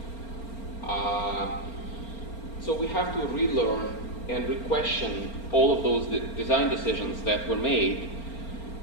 So we have to relearn and re-question all of those design decisions that were made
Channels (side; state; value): right; late; 4.4 ms